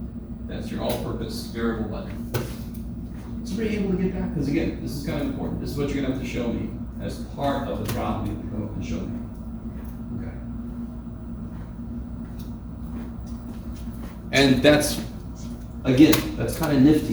That's your all-purpose variable button. Somebody able to get that? Because again, this is kind of important. This is what you're going to have to show me as part of the problem. You have to come up and show me. Okay. And that's, again, that's kind of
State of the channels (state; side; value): identical; both; correlation 1.00